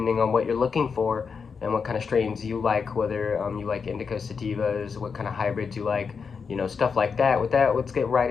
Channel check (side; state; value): right; quieter; 5.7 dB